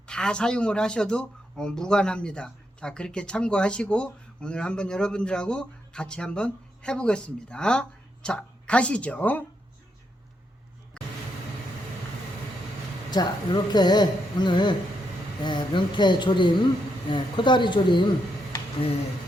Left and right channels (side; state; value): both; normal; correlation 0.80